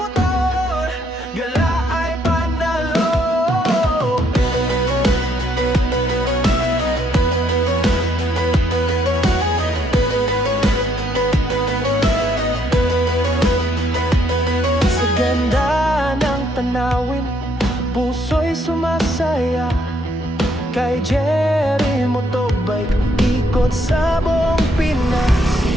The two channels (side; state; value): both; normal; correlation 0.70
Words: gala ay panalo. Sa ganda ng tanawin, puso'y sumasaya. Kay Jerry Motobike, ikot sa buong Pinas.